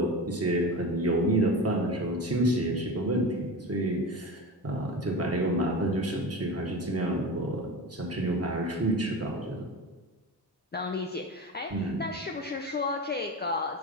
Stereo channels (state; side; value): normal; both; correlation 0.28